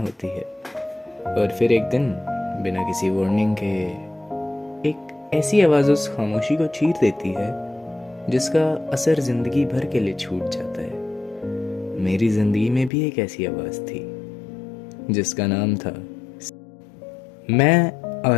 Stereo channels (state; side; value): drops out; right; at 12.9 s